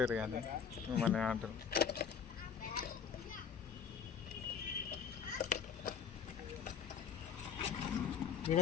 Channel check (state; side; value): quieter; right; 7.2 dB